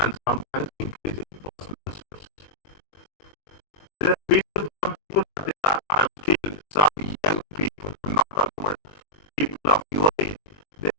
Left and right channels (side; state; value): right; late; 21 ms